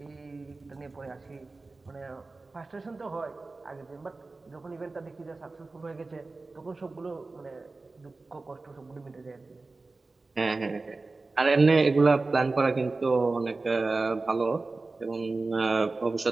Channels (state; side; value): quieter; left; 3.5 dB